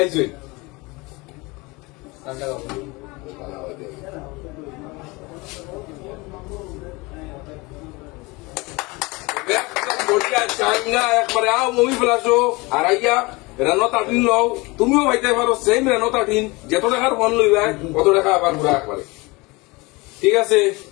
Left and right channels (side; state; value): right; quieter; 24.6 dB